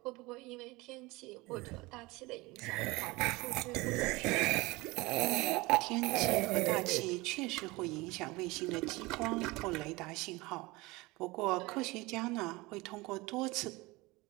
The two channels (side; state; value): left; quieter; 22.5 dB